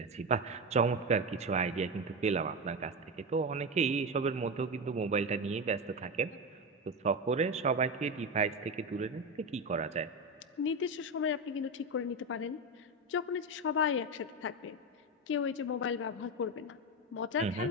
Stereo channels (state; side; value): normal; both; correlation 0.15